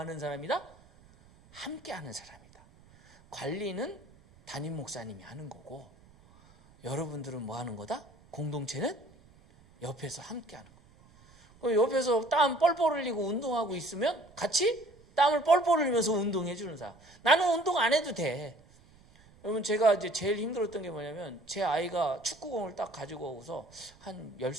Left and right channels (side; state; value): right; noise; rumble, 27 dB below the sound